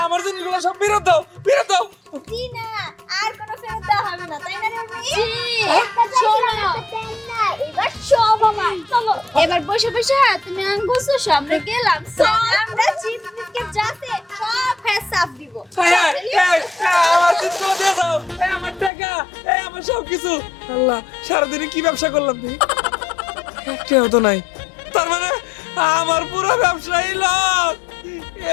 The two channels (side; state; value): right; drops out; at 18.9 s